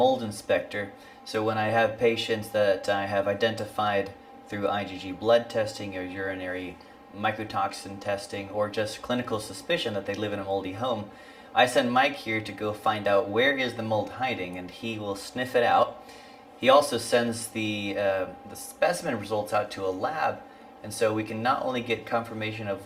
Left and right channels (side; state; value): both; identical; correlation 1.00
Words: inspector. So when I have patients that I have identified through IgG blood testing or urinary mycotoxin testing or just clinical suspicion that they live in a moldy home, I send Mike here to go find out where is the mold hiding, and he will sniff it out. He also sends the specimen results out to a lab, and so we can not only get confirmation of